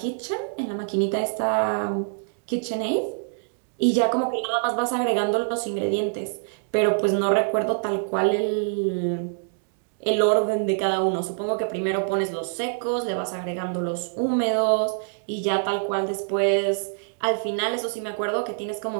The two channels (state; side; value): silent; left; digital silence